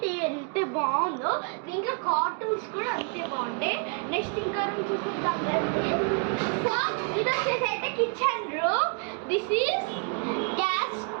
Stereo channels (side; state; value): left; quieter; 37.9 dB